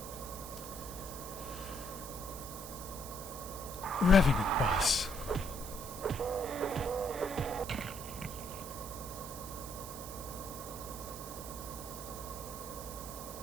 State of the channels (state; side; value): noise; right; hiss, 10 dB below the sound